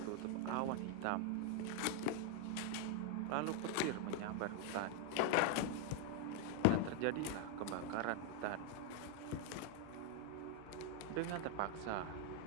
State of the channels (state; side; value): different; both; correlation 0.01